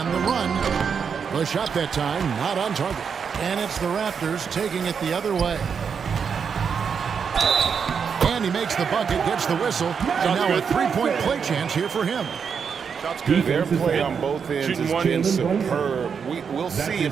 the run. The shot that time, not on target. And it's the Raptors taking it the other way. And he makes the bucket, gets the whistle, and now a three-point play chance here for him. Their play on both ends has been superb. We'll see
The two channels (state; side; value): quieter; left; 6.5 dB